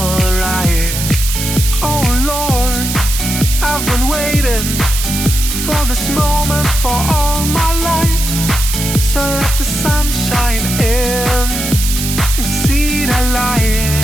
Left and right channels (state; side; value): noise; right; hiss, 4 dB below the sound